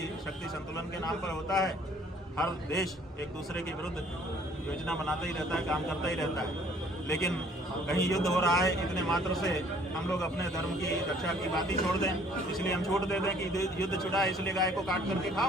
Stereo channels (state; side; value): normal; both; correlation 0.58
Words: शक्ति संतुलन के नाम पर होता है। हर देश एक दूसरे के विरुद्ध योजना बनाता ही रहता है, काम करता ही रहता है। लेकिन कहीं युद्ध हो रहा है, इतने मात्र से हम लोग अपने धर्म की रक्षा की बात ही छोड़ दें। इसलिए हम छूट दे दें कि युद्ध छुड़ा है, इसलिए गाय को काट करके